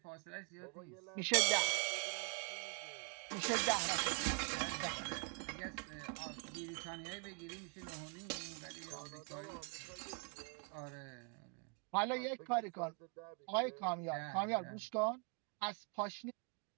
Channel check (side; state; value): left; quieter; 37.3 dB